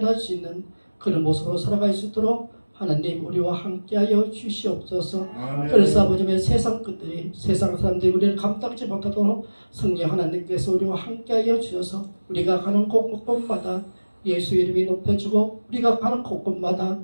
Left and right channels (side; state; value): both; inverted; correlation -1.00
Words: 수 있는 그런 모습으로 살아갈 수 있도록 하나님 우리와 함께하여 주시옵소서. 아멘. 그래서 아버지의 세상 끝들이 세상 사람들이 우리를 감당지 못하도록 성령 하나님께서 우리와 함께하여 주셔서 우리가 가는 곳곳마다 예수 이름이 높여지고 우리가 가는 곳곳마다